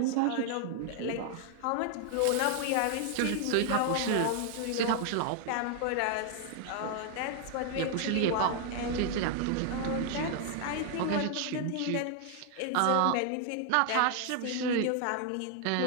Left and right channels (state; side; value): different; both; correlation 0.00